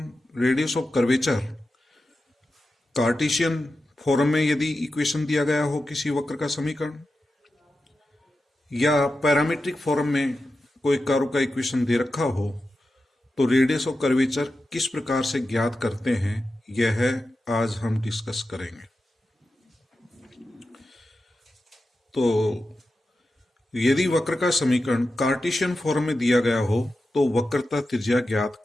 radius of curvature Cartesian form में यदि इक्वेशन दिया गया हो किसी वक्र का समीकरण या पैरामीट्रिक फॉर्म में कोई कर्व का इक्वेशन दे रखा हो तो रेडियस ऑफ कर्वेचर किस प्रकार से ज्ञात करते हैं यह आज हम डिस्कस करेंगे। तो यदि वक्र का समीकरण कार्टेशियन फॉर्म में दिया गया हो तो वक्रता त्रिज्या ज्ञात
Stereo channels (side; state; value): both; normal; correlation 0.91